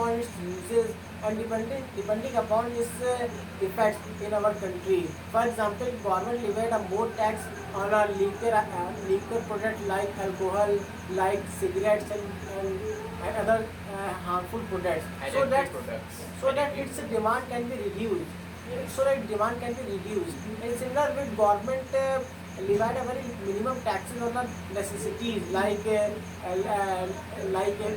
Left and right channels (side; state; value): both; identical; correlation 1.00